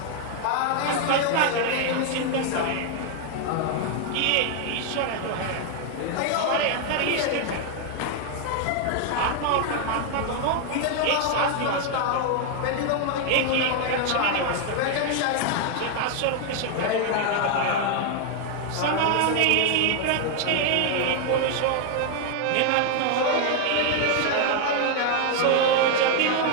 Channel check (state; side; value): different; both; correlation 0.00